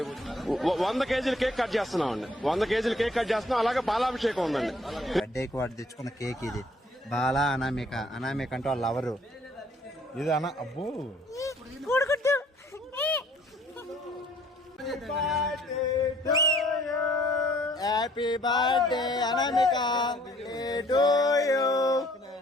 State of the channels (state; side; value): normal; both; correlation 0.60